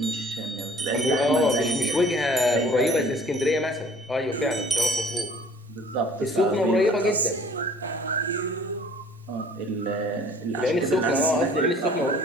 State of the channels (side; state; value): both; normal; correlation 0.52